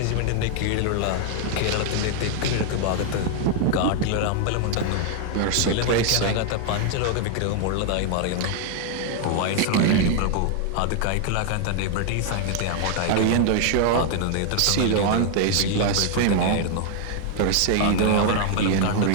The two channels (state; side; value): different; both; correlation 0.00